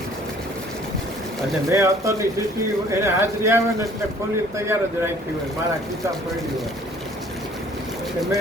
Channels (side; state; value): both; normal; correlation 0.55